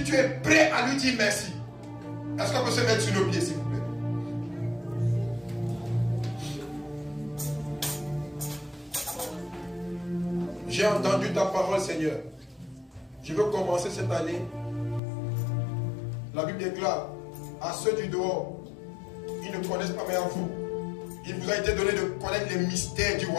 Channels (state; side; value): drops out; right; at 15.0 s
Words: tu es prêt à lui dire merci, est-ce qu'on peut se mettre sur nos pieds s'il vous plaît? J'ai entendu ta parole, Seigneur. Je veux commencer cette année. La Bible déclare à ceux du dehors, ils ne connaissent pas, mais à vous, il vous a été donné de connaître les mystères du